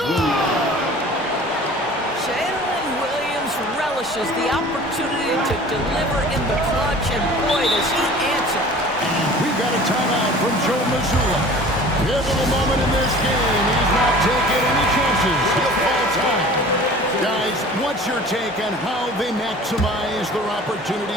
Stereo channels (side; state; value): both; normal; correlation 0.44